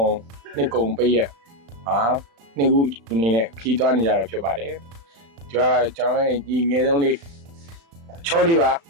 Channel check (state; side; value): late; left; 35 ms